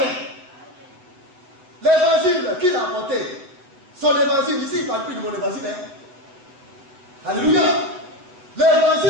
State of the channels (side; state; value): left; late; 8.2 ms